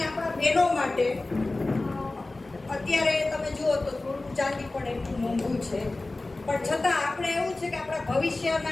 આપણા બહેનો માટે અત્યારે તમે જુઓ તો થોડું ચાંદી પણ એટલું મોંઘું છે, પણ છતાં આપણે એવું છે કે આપણા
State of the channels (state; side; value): quieter; right; 3.1 dB